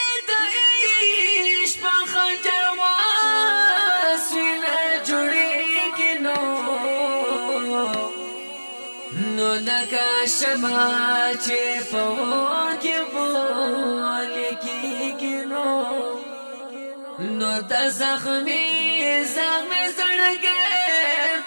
د عشق په خنجر واسینه جوړیږي نو لکه شمع چې په اور کې بولې کېږي نو د زخمي زړګی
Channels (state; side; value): inverted; both; correlation -1.00